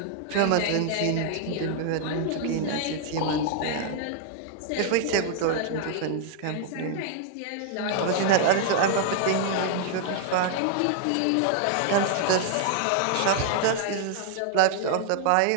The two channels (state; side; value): different; both; correlation 0.00